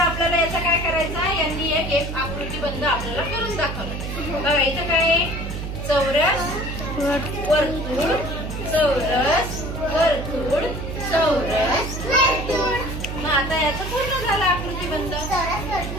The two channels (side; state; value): right; noise; hum, 6 dB below the sound